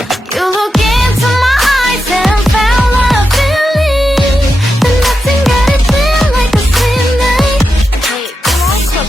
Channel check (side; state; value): both; normal; correlation 0.88